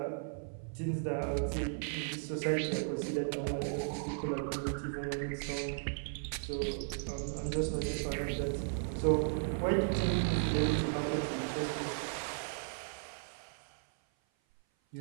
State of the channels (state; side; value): silent; left; 54 dB below the other